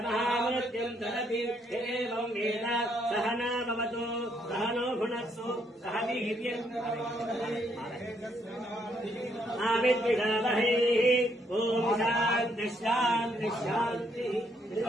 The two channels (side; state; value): both; normal; correlation 0.72